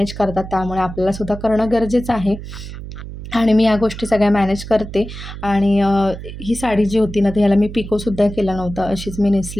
करतात, त्यामुळे आपल्यालासुद्धा करणं गरजेचं आहे. आणि मी या गोष्टी सगळ्या मॅनेज करते. आणि ही साडी जी होती ना, तर ह्याला मी पिकोसुद्धा केला नव्हता, अशीच मी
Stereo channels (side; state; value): right; noise; hum, 11 dB below the sound